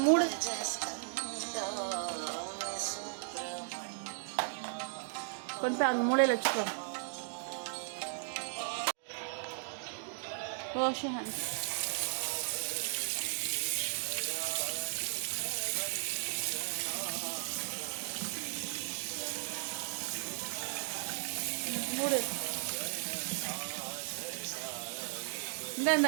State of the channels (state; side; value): silent; left; digital silence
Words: மூடு. கொண்டு போய் அங்கே மூலையில் வச்சுக்கோ. Wash your hands. மூடு.